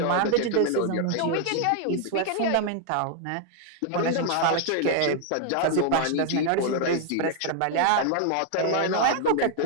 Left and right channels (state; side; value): different; both; correlation 0.00